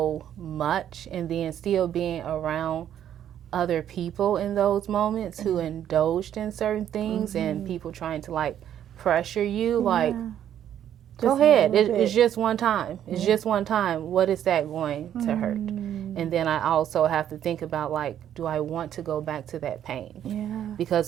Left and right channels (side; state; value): left; quieter; 10.4 dB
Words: much and then still being around other people in those moments who indulged in certain things and people trying to like pressure you like, go ahead. It's just one time. It's just one time. What is that going to hurt? And then I also have to think about, like, do I want to go back to that pain? Yeah.